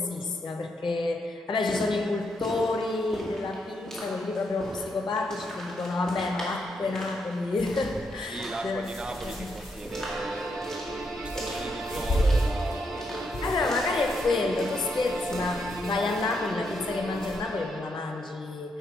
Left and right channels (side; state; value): both; normal; correlation 0.79